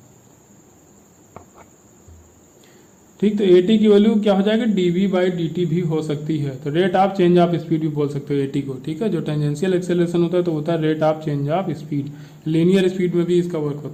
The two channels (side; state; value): both; identical; correlation 1.00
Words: ठीक। तो ए टी की वैल्यू क्या हो जाएगा, D V by D T भी हो सकती है, तो rate of change of speed भी बोल सकते हो ए टी को, ठीक है। जो टेंजेंशियल एक्सेलरेशन होता है तो होता है rate of change of speed, linear speed में भी इसका वर्क